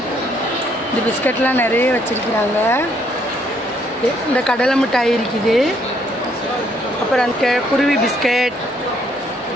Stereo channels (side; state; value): both; normal; correlation 0.69